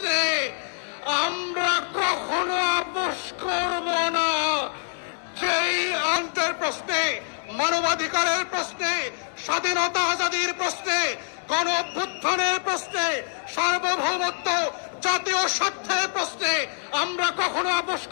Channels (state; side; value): silent; right; digital silence